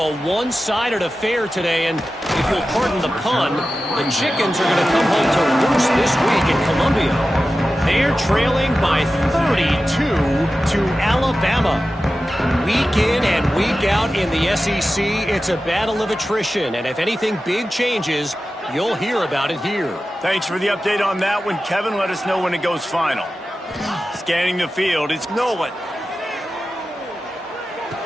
one-sided affair today, and if you'll pardon the pun, the Chickens are going to come home to roost this week in Columbia. They're trailing by 32 to Alabama. Week in and week out in the SEC, it's a battle of attrition, and if anything big changes, you'll hear about it here. Thanks for the update on that one, Kevin. Let us know when it goes final. Scanning the field, it's Nolan.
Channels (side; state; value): both; normal; correlation 0.94